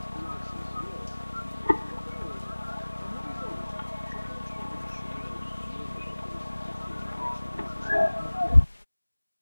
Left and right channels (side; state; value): both; inverted; correlation -1.00